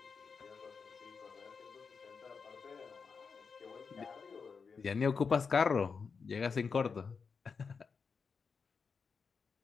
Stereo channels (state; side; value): quieter; right; 5.4 dB